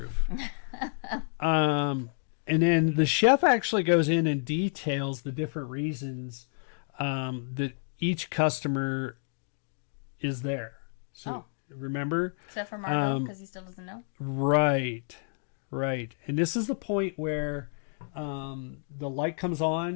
And then the chef actually goes in and details the different reasons that each customer is there. So remember? Except for Margot, because he still doesn't know. Right. And this is the point where the light comes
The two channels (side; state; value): right; silent; digital silence